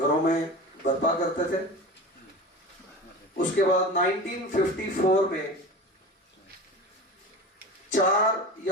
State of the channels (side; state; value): both; normal; correlation 0.31